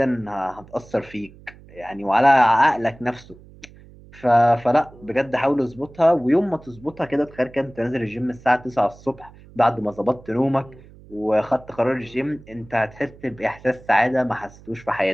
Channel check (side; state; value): right; noise; hum, 22 dB below the sound